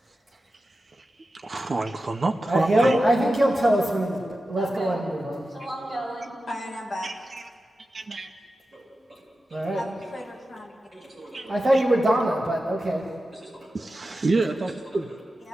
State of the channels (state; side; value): normal; both; correlation 0.92